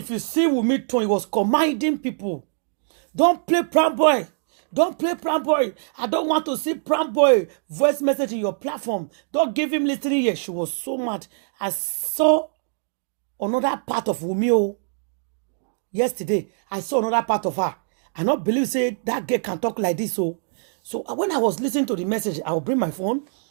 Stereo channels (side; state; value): left; silent; digital silence